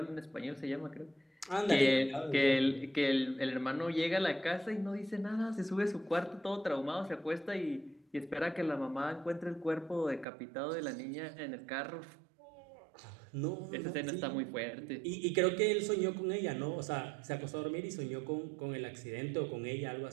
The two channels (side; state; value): left; drops out; at 10.2 s